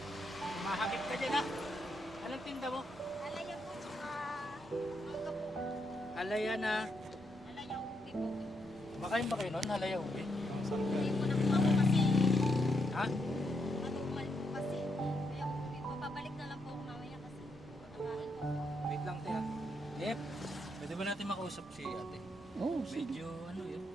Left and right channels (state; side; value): normal; both; correlation 0.80